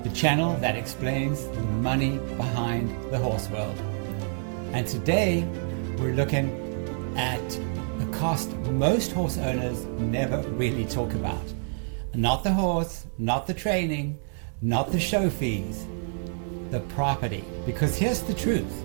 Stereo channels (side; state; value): left; silent; 60 dB below the other